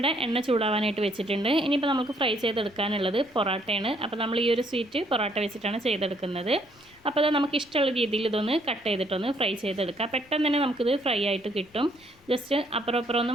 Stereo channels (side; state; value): left; noise; rumble, 29 dB below the sound